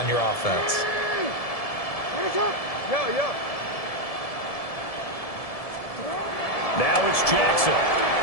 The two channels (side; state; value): right; late; 1.7 ms